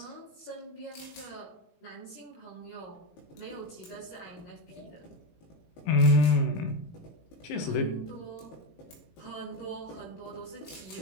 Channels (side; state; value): right; late; 18 ms